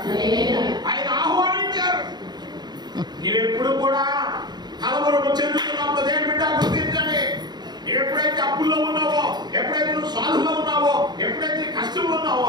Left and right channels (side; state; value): left; late; 0.20 ms